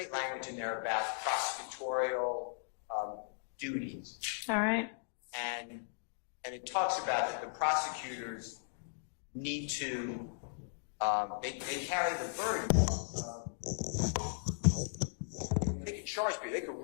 language in there about prosecutorial duties. All right. And it talks about that the prosecutors need to they carry the burden. They can charge people. They can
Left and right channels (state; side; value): silent; right; digital silence